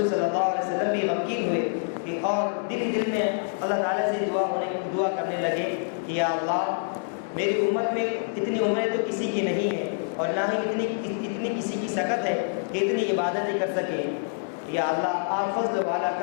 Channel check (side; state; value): right; silent; digital silence